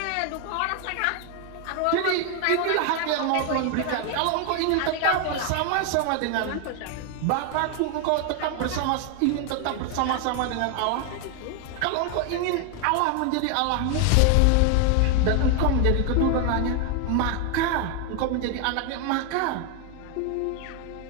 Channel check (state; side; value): different; both; correlation 0.01